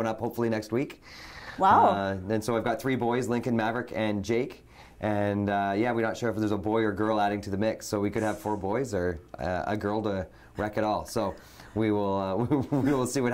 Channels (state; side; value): identical; both; correlation 1.00